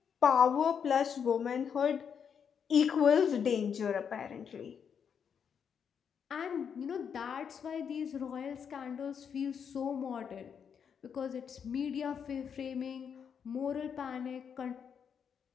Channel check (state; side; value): quieter; right; 7.3 dB